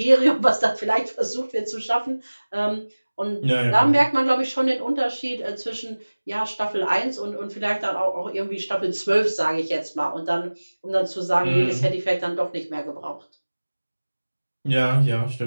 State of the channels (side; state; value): both; inverted; correlation -1.00